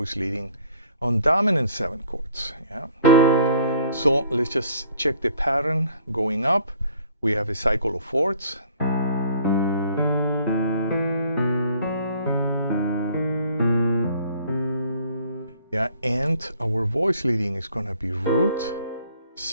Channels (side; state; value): both; inverted; correlation -0.56